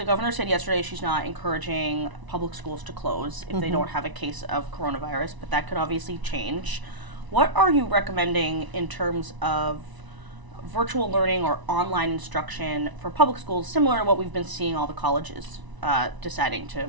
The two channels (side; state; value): left; late; 1.0 ms